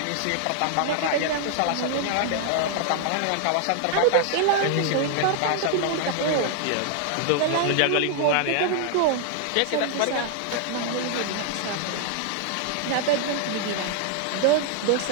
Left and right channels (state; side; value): different; both; correlation 0.00